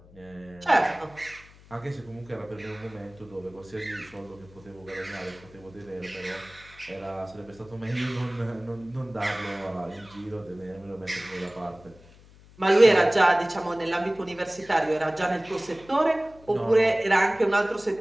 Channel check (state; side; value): noise; left; hum, 24 dB below the sound